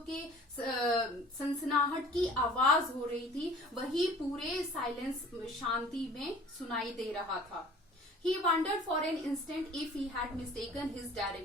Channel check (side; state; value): both; normal; correlation 0.48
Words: के सनसनाहट की आवाज हो रही थी वही पूरे साइलेंस, शांति में सुनाई दे रहा था. He wondered for an instant if he had mistaken his